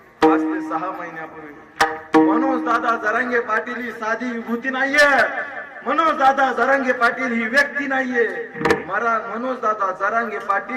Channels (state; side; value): identical; both; correlation 1.00